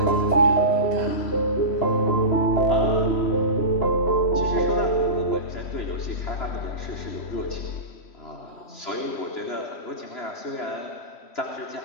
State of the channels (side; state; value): right; late; 3.1 ms